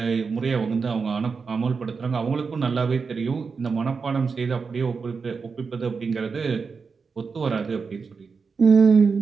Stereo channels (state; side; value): quieter; left; 5.1 dB